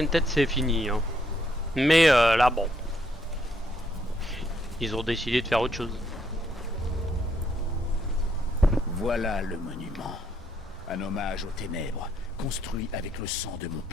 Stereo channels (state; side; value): normal; both; correlation 0.73